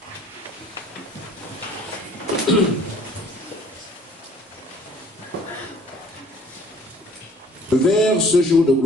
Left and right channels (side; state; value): both; normal; correlation 0.54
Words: Vers ce jour de